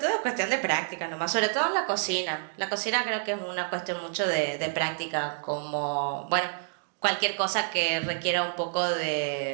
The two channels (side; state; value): left; silent; digital silence